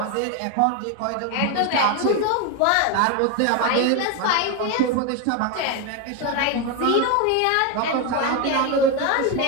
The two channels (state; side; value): different; both; correlation 0.02